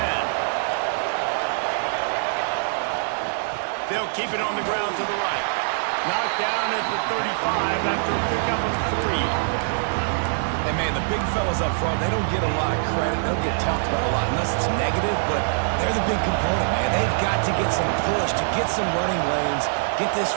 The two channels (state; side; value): silent; left; digital silence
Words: 10. They'll keep it on the ground to the right. Knocked down at the 35 after a pickup of 3. And, man, the big fellas up front, they don't get a lot of credit. They don't get talked about a lot unless it's negative, but they're the big component, man. They've got to get some push, to get some running lanes, get this